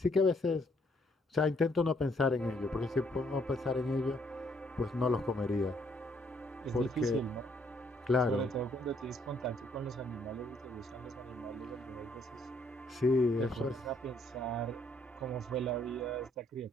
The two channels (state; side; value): normal; both; correlation 0.68